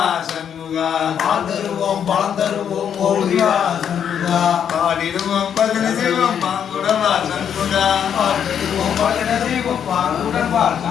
சண்முகா பாந்தருவோம் பழந்தருவோம் ஓடிவா சண்முகா பாடிடுவோம் பஜனை செய்வோம் பாங்குடவா சண்முகா பாடிடுவோம் பஜனை செய்வோம் பாங்குடவா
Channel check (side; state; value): right; quieter; 8.5 dB